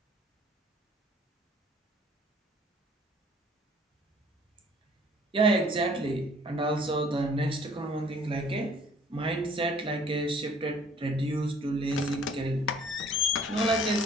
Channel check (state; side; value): normal; both; correlation 0.56